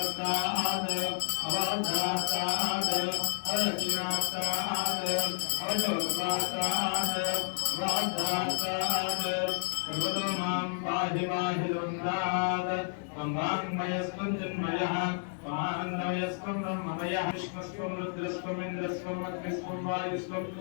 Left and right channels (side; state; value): right; silent; 57 dB below the other